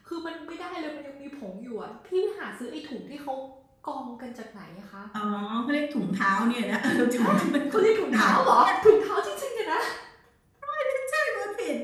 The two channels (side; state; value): both; identical; correlation 1.00